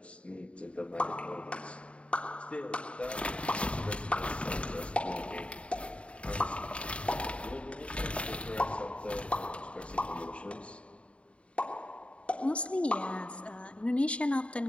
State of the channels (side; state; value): right; late; 0.061 ms